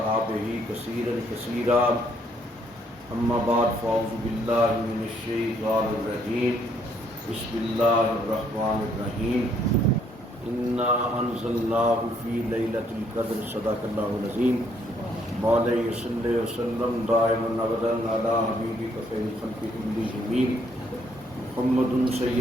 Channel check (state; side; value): normal; both; correlation 0.68